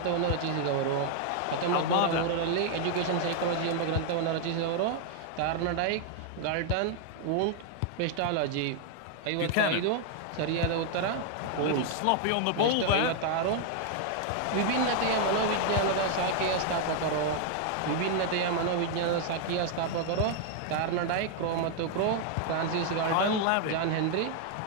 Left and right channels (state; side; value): different; both; correlation 0.00